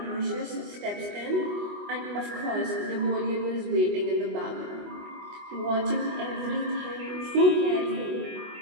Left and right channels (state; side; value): late; left; 24 ms